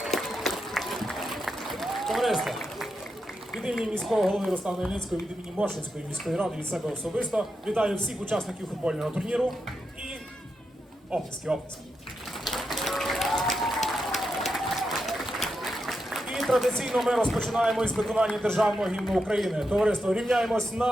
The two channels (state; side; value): normal; both; correlation 0.86